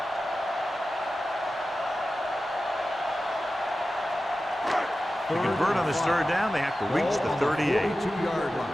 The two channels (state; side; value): normal; both; correlation 0.94